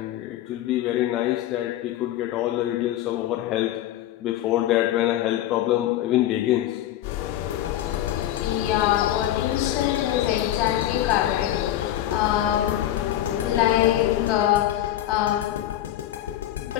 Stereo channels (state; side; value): quieter; right; 13.0 dB